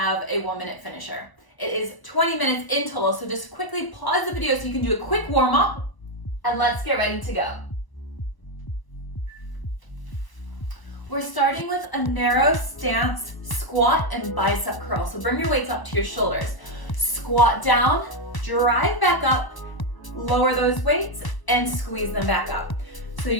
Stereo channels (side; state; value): right; late; 1.0 ms